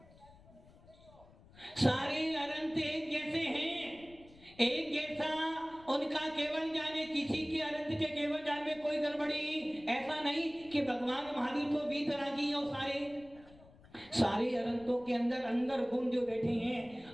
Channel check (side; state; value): left; noise; rumble, 24 dB below the sound